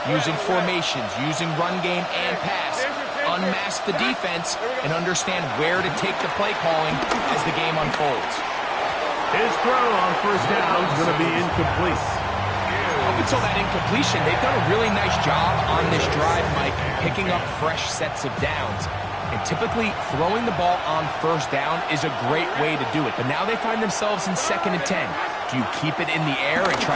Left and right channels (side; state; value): both; identical; correlation 1.00